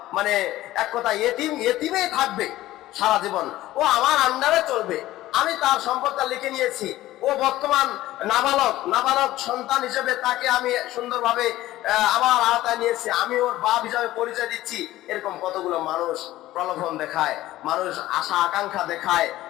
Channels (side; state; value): right; quieter; 15.7 dB